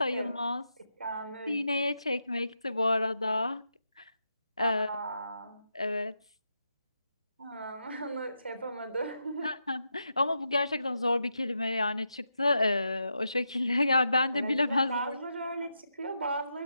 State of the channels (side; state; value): both; inverted; correlation -0.85